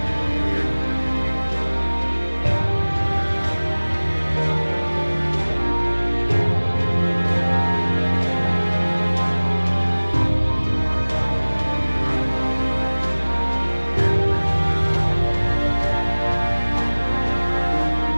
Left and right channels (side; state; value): both; inverted; correlation -1.00